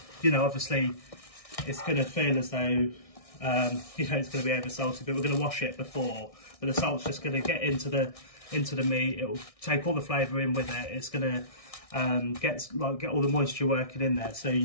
it's going to feel as though, it's going to be over salty, but we're going to wash it before. But the salt's just going to get into the meat. It'll take all the flavour in with it. It's going to get all the moisture working in there, so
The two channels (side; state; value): right; late; 1.6 ms